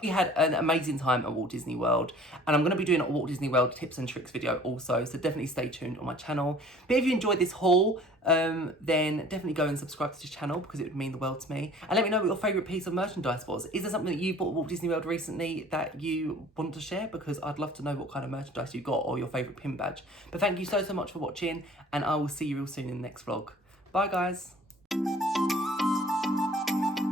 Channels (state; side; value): normal; both; correlation 0.49